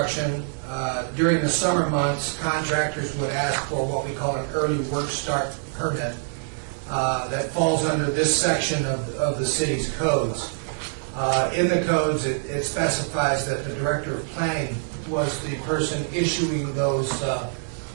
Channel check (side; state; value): left; silent; 62 dB below the other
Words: During the summer months, contractors would ask for what we call an early work start permit that falls under this section of the city's codes. In the codes, it specifies that the Director of Planning was the person issuing those